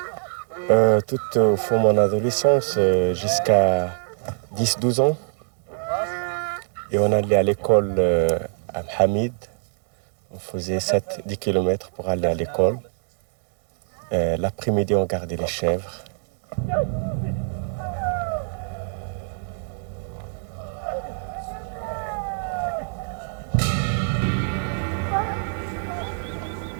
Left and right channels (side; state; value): left; silent; digital silence